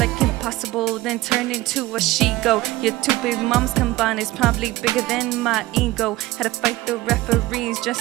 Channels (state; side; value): quieter; left; 18.4 dB